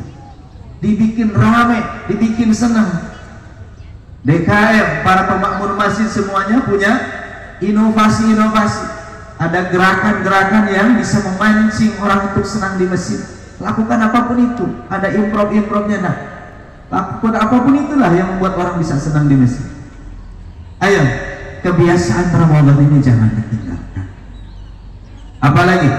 dibikin ramai, dibikin senang. DKM, para pemakmur masjid semuanya punya inovasi-inovasi, ada gerakan-gerakan yang bisa memancing orang untuk senang di masjid. Lakukan apapun itu, ada improv-improvnya. Nah, lakukan apapun itulah yang membuat orang bisa senang di masjid. Ayo, kebiasaan Ramadan ini jangan ditinggalkan. Apalagi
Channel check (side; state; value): both; identical; correlation 1.00